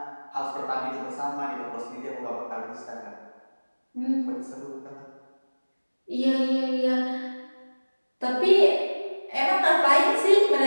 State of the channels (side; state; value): both; inverted; correlation -1.00